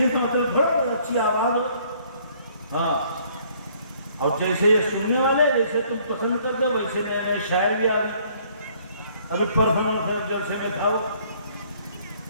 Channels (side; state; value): both; inverted; correlation -0.61